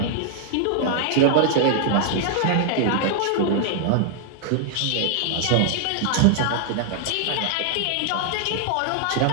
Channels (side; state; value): both; different; correlation -0.01